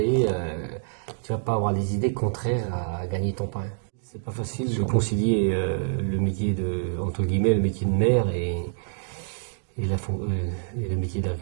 avoir des idées contraires à gagner ton pain. C'est pas facile de concilier le métier entre guillemets, le métier de maire et le métier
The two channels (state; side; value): silent; left; digital silence